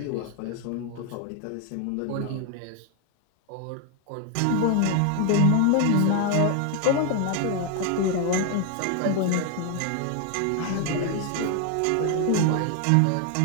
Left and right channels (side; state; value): both; different; correlation 0.01